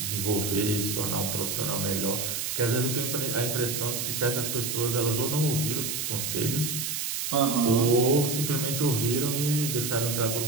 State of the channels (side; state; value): right; noise; hiss, 2 dB below the sound